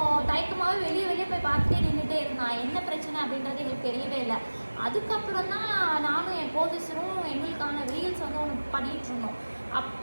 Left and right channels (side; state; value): both; inverted; correlation -1.00